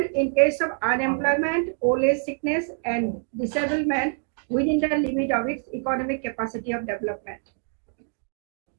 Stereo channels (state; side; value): silent; left; 59 dB below the other